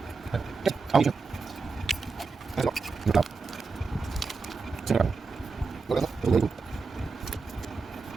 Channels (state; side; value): quieter; left; 4.5 dB